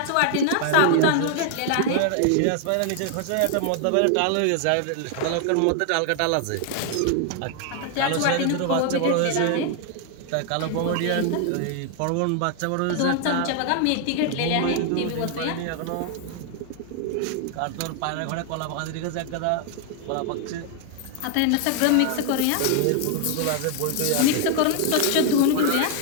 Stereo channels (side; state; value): both; different; correlation 0.00